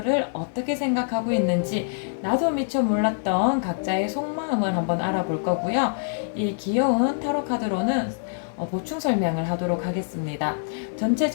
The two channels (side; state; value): right; silent; 62 dB below the other